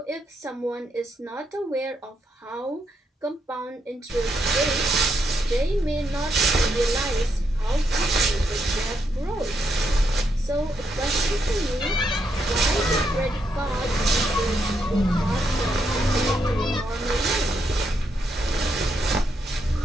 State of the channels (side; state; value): both; normal; correlation 0.79